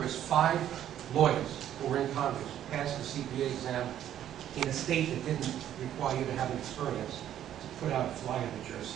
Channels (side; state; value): left; quieter; 11.1 dB